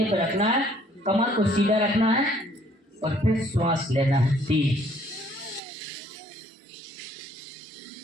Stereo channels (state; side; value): drops out; left; at 5.6 s